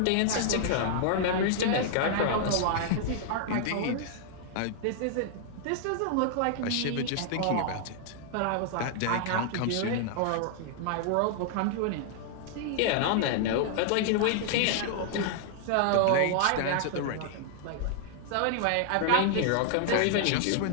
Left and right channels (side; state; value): both; different; correlation -0.01